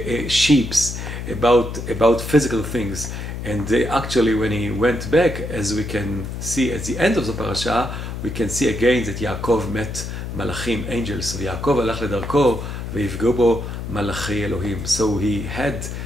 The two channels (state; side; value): noise; left; hum, 6 dB below the sound